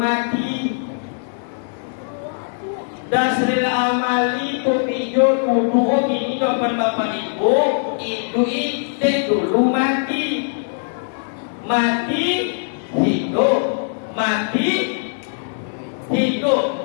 dasril amali tu pijo dulu ini dapat bapak ibu itu dek dulu mati mati hidup mati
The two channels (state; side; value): silent; right; digital silence